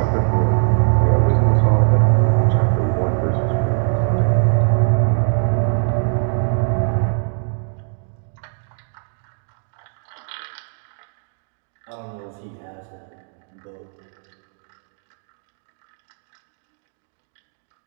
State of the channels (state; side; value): silent; left; digital silence